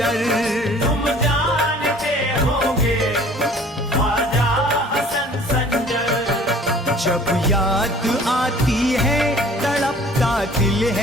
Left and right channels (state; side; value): normal; both; correlation 0.51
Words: तुम जानते होगे ख्वाजा हसन संजर। जब याद आती है तड़पता दिल